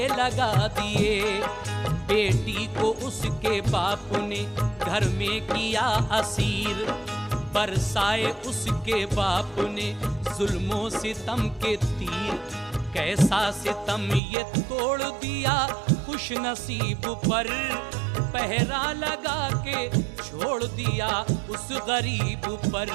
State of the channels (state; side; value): drops out; left; at 14.2 s